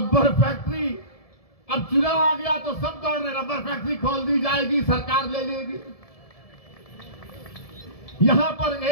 फैक्ट्री, अब चुनाव आ गया तो सब दौड़ रहे, रबर फैक्ट्री खोल दी जाएगी, सरकार ले लेगी। यहां पर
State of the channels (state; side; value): late; right; 1.7 ms